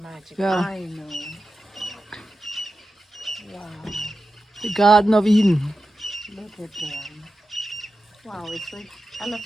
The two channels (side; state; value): both; normal; correlation 0.91